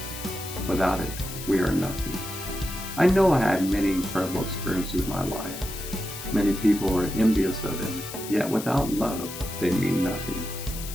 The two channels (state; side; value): noise; left; hiss, 10 dB below the sound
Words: Without it, we are nothing. I know I had many incredible experiences in my life. Many people are envious of them, yet without love, they mean nothing.